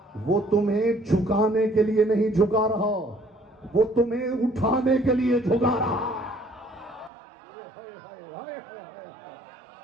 वो तुम्हें झुकाने के लिए नहीं झुका रहा, वो तुम्हें उठाने के लिए झुका रहा।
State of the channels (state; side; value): drops out; left; at 7.1 s